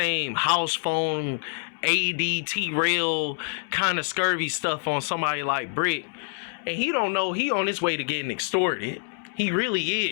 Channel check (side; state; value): right; silent; 61 dB below the other